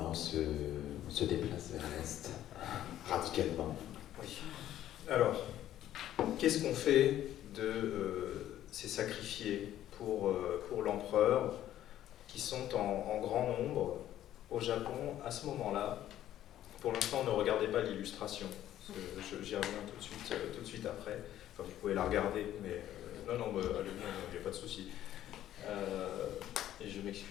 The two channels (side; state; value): right; quieter; 12.3 dB